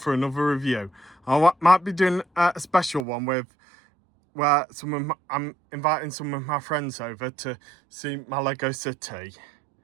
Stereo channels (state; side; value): drops out; left; at 3.1 s